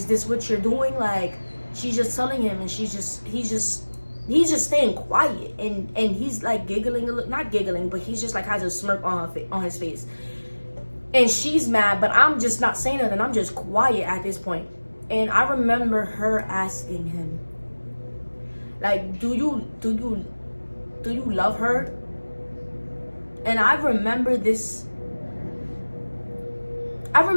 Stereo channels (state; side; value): inverted; both; correlation -1.00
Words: this what you're doing? Like, she's just telling him, and he's just staying quiet, and he's like giggling a little, not giggling, but he's just like has a smirk on his face, and she's mad, but I'm just not saying nothing. I'm just quiet at this point. And I remember her asking him, like, do you love her? And I remember